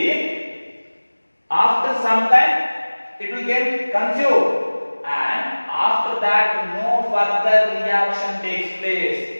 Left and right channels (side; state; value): both; inverted; correlation -1.00